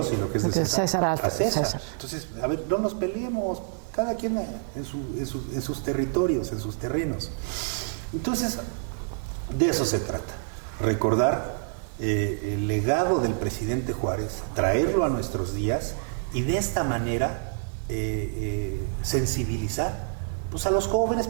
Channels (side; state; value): left; silent; 60 dB below the other